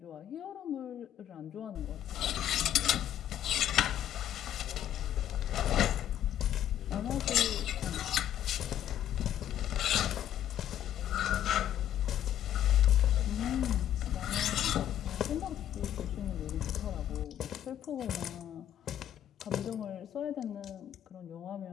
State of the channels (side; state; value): right; quieter; 11.2 dB